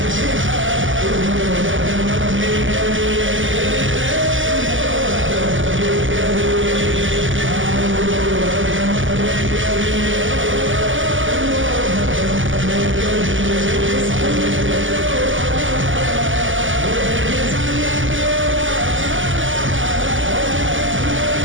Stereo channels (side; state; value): left; late; 0.57 ms